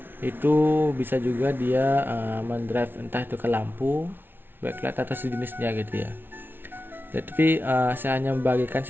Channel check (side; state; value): left; late; 0.10 ms